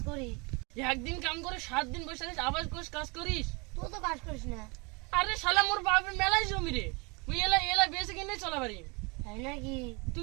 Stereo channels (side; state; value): left; quieter; 29.5 dB